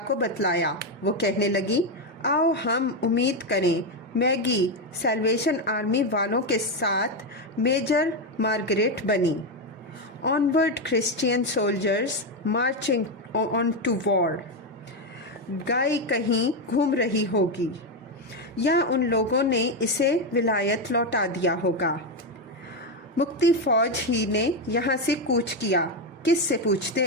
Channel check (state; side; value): normal; both; correlation 0.08